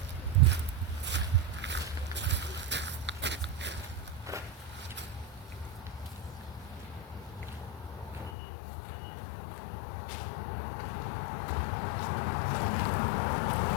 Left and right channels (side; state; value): right; drops out; at 8.3 s